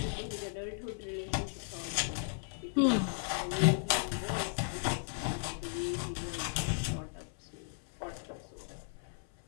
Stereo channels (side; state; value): right; silent; 54 dB below the other